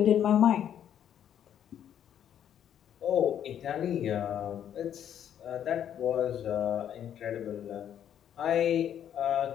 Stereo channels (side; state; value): right; quieter; 9.8 dB